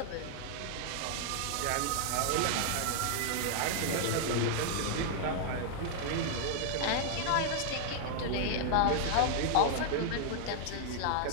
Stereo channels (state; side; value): different; both; correlation 0.00